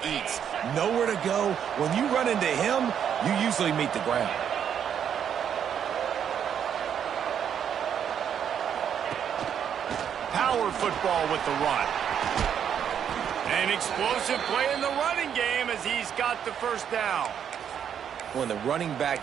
eats. Nowhere to go. When you run into him, you usually meet the ground. Power football with the run. An explosive play in the running game as he's got the first down. When the running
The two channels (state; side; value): quieter; left; 8.6 dB